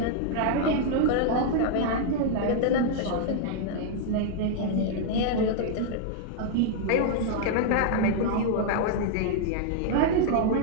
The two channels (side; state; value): both; different; correlation 0.00